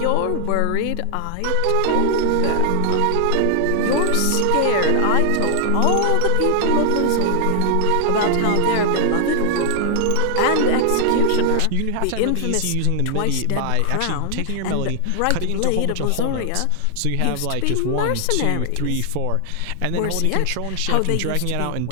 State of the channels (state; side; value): different; both; correlation 0.00